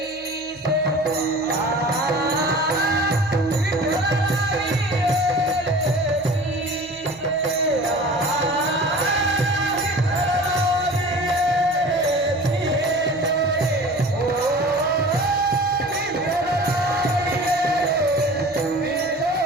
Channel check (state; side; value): noise; right; hum, 27 dB below the sound